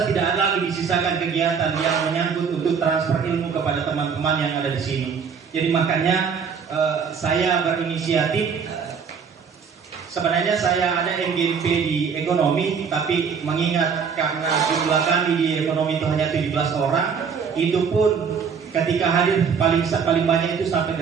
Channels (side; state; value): left; quieter; 6.3 dB